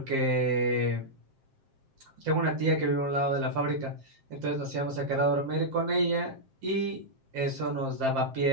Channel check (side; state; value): left; late; 7.6 ms